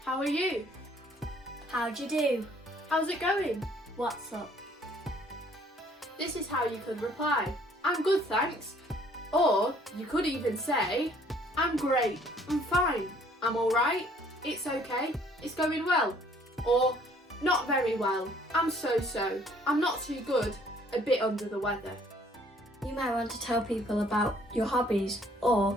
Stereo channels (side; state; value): both; normal; correlation 0.60